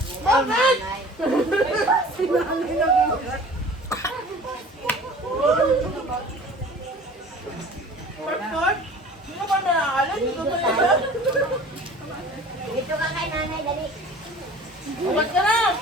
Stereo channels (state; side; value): normal; both; correlation 0.44